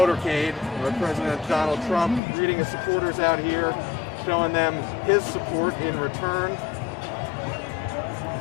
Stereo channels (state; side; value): drops out; right; at 2.2 s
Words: where President Donald Trump greeting his supporters out here, showing them his support in return.